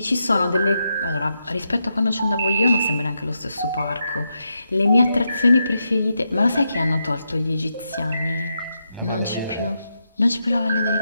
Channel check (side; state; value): both; inverted; correlation -0.84